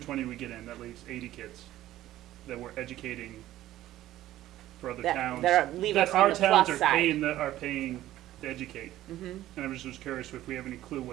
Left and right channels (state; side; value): quieter; left; 14.3 dB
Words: we get in, that leaves 80 kids that we're educating for other towns. Leave us on our the towns plus are side. paying to educate. Mhm. And I was just curious if we have any clue